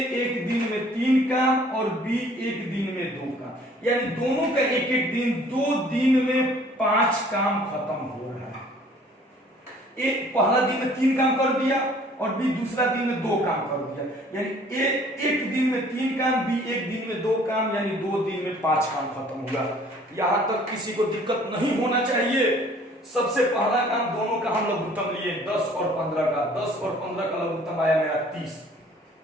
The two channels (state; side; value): normal; both; correlation 0.55